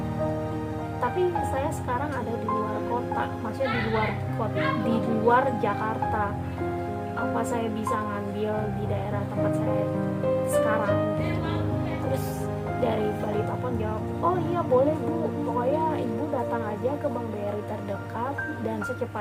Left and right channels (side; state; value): both; identical; correlation 1.00